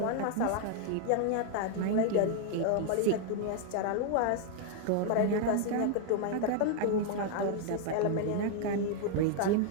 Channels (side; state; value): both; different; correlation 0.00